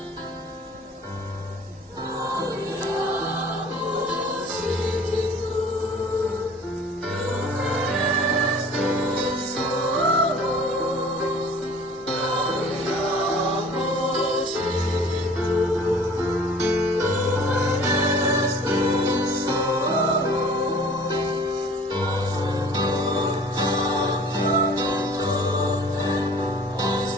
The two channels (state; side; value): normal; both; correlation 0.48